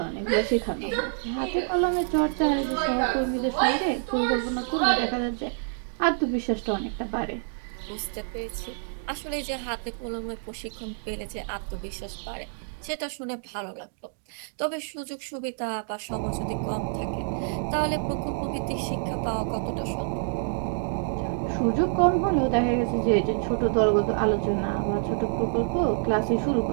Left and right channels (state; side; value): silent; left; digital silence